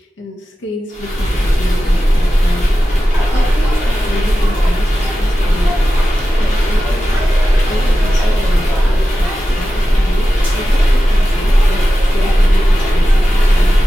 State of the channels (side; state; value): both; normal; correlation 0.93